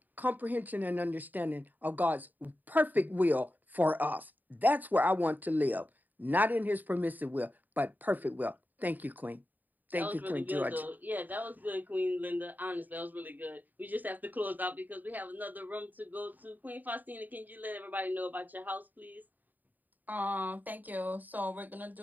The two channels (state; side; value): late; left; 0.086 ms